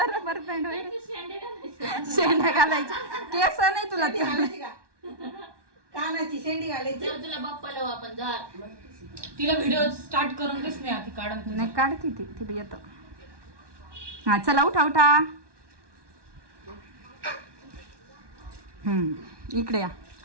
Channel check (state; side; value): late; left; 1.2 ms